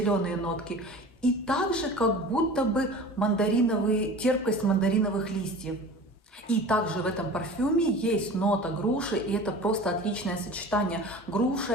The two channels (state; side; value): normal; both; correlation 0.38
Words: нотки. И также как будто бы терпкость мандариновых листьев. И также в этом парфюме есть нота груши, и это просто отличное сочетание. Груша